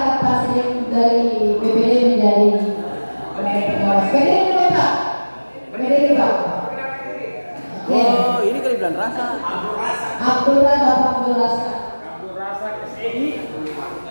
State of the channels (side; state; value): both; inverted; correlation -1.00